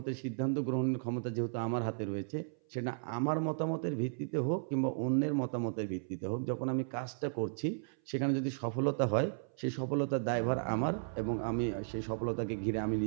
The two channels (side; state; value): left; silent; 55 dB below the other